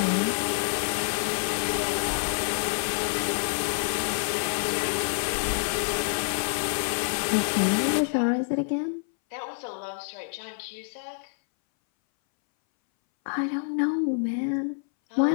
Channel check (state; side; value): silent; right; 60 dB below the other